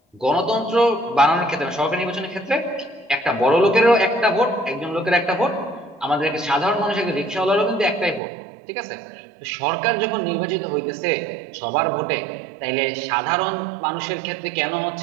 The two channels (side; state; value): left; drops out; at 8.2 s